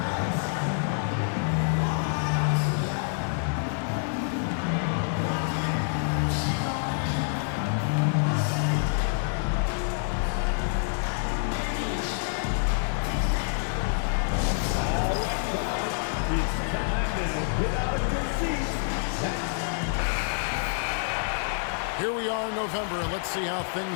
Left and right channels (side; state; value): right; silent; digital silence